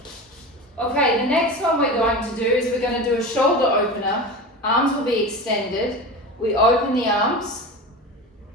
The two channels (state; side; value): normal; both; correlation 0.27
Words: Okay, the next one we're going to do is we're going to do a shoulder opener. Arms will be extended. We open the arms,